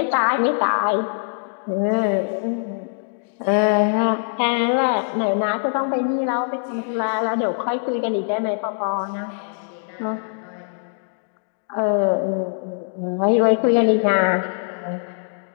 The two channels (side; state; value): right; silent; digital silence